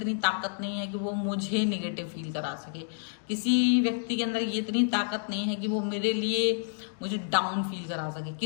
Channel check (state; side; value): silent; right; digital silence